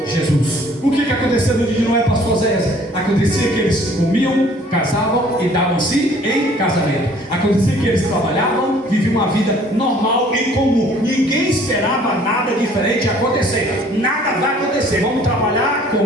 Jesus. O que aconteceu no dia de Noé, pastor Zé? Acontecia que eles comiam, casavam e davam-se em casamento. Acontecia que eles trabalhavam, viviam uma vida normal e comum. Ninguém esperava nada diferente acontecer. Nada vai acontecer. Vamos trabalhar,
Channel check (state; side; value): normal; both; correlation 0.56